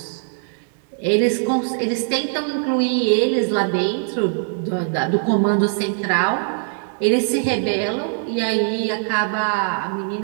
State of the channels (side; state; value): left; silent; 65 dB below the other